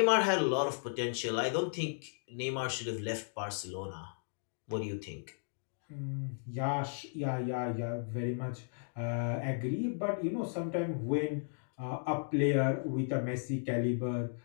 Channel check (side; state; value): right; silent; digital silence